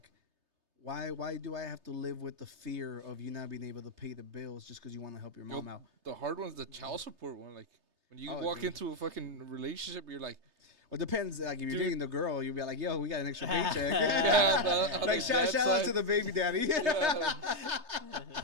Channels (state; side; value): late; left; 3.3 ms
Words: why do I have to live with the fear of you not being able to pay the bills just because you want to help your mom out? The hard one's the child support one. Like when you walk into a fucking relationship, you're like. Well, it depends. Like if you're dating the girl, you'll be like, "Yo, we got an extra paycheck." Like shout out to the baby daddy.